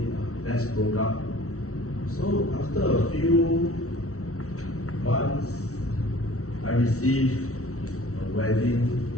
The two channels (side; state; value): right; late; 0.64 ms